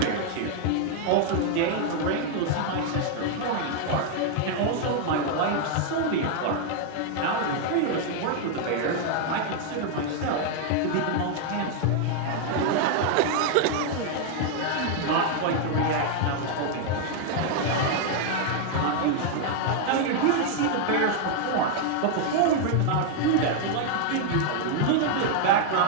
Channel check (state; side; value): different; both; correlation 0.00